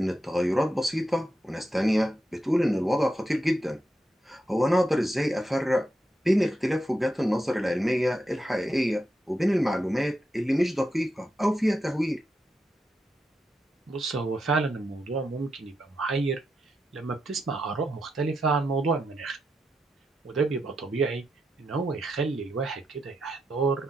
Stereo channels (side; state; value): both; normal; correlation 0.86